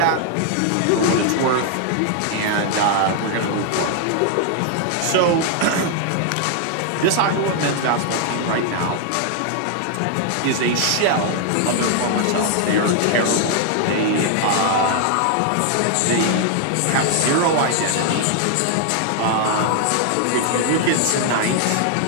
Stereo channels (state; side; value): different; both; correlation 0.00